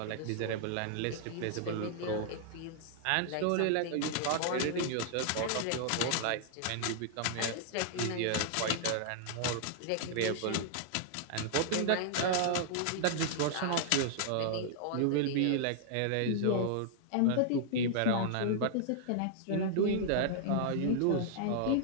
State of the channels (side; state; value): both; different; correlation -0.01